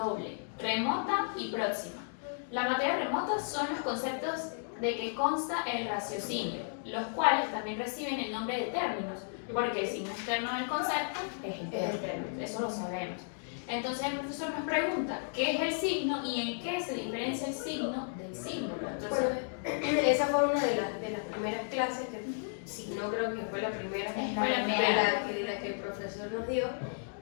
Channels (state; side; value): silent; right; digital silence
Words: remota y próxima. La materia remota son los conceptos de que consta el raciocinio, los cuales también reciben el nombre de términos, porque el signo externo del concepto es el término, eso lo sabemos. Entonces el profesor nos pregunta qué es el signo y en qué se diferencia el signo del símbolo. Entonces, bueno, esa fue una de las primeras clases, que si no creo que fue la primera, fue la de la que el profesor nos dio,